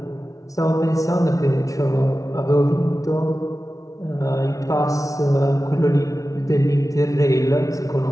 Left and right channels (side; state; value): right; late; 0.17 ms